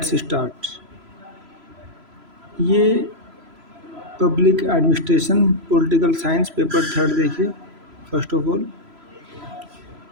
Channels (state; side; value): late; left; 3.0 ms